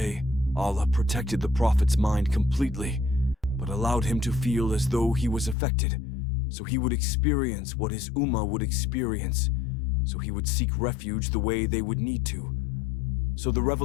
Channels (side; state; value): right; drops out; at 5.6 s